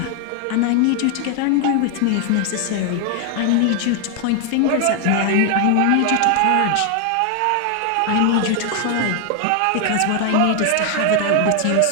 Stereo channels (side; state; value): both; different; correlation 0.00